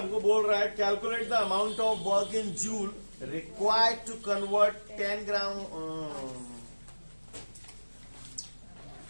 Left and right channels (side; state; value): both; inverted; correlation -1.00